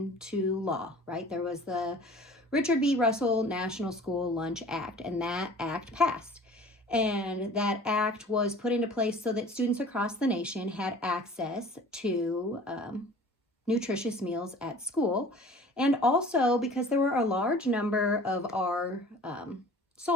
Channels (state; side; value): normal; both; correlation 0.46